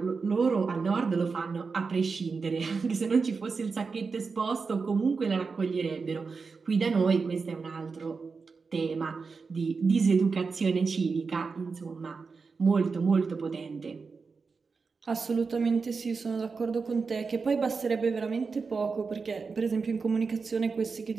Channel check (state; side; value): quieter; left; 4.8 dB